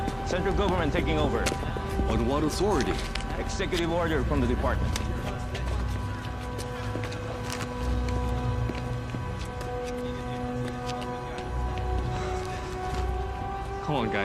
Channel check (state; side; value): identical; both; correlation 1.00